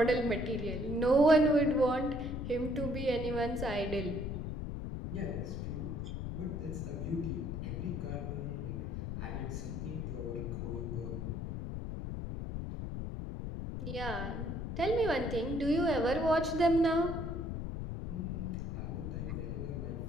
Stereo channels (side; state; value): left; noise; rumble, 4 dB below the sound